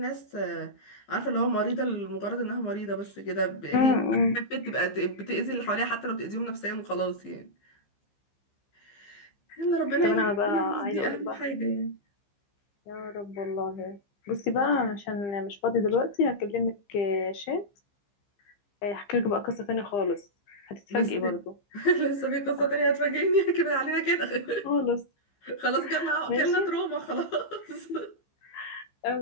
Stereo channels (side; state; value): right; late; 15 ms